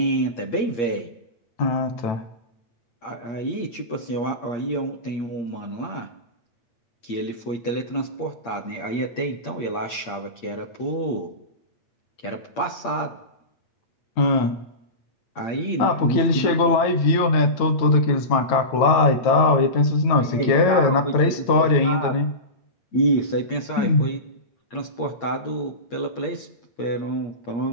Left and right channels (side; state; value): right; late; 9.1 ms